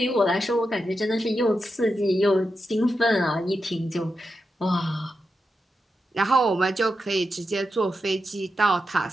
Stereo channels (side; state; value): both; normal; correlation 0.88